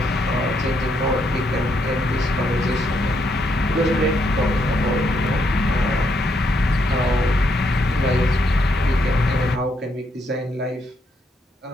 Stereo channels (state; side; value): normal; both; correlation 0.76